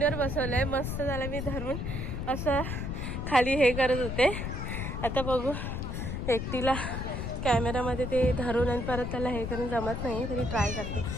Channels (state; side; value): noise; left; rumble, 4 dB below the sound